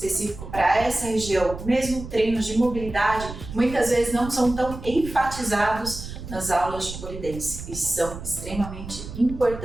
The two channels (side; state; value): right; noise; rumble, 11 dB below the sound